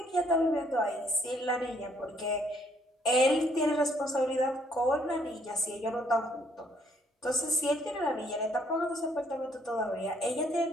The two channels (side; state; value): both; normal; correlation 0.67